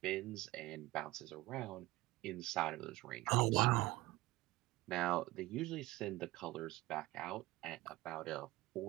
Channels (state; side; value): quieter; left; 19.0 dB